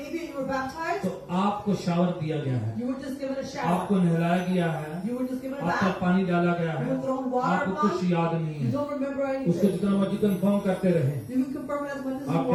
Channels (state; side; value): identical; both; correlation 1.00